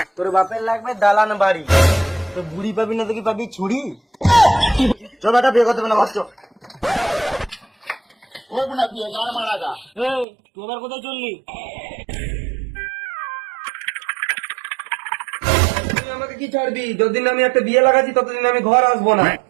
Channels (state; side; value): drops out; left; at 10.2 s